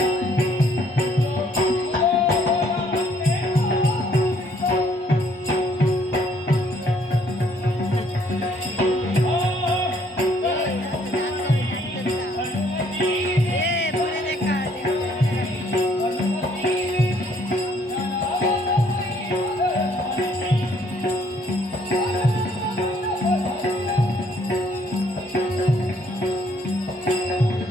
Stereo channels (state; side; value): normal; both; correlation 0.65